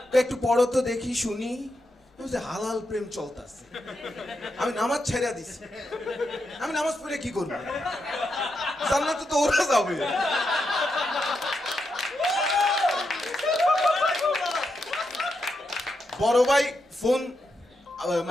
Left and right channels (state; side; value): normal; both; correlation 0.84